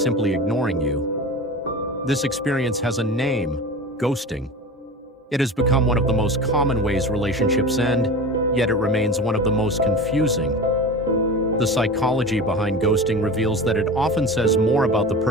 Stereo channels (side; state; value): both; normal; correlation 0.32